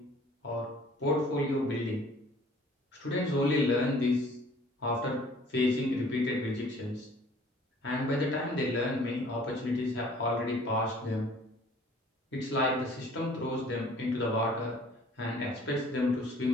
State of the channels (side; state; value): both; normal; correlation 0.53